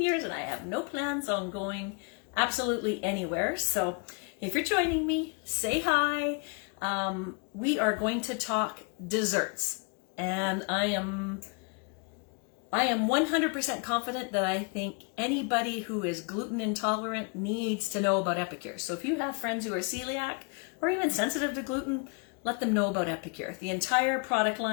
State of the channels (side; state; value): right; quieter; 36.0 dB